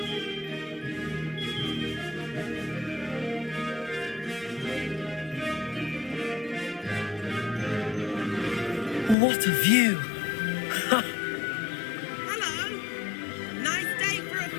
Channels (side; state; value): right; drops out; at 9.2 s